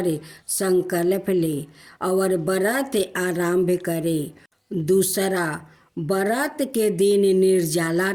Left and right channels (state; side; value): identical; both; correlation 1.00